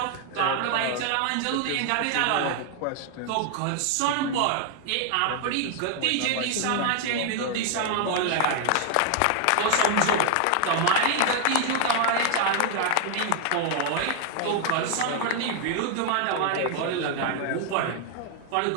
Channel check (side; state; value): both; different; correlation 0.00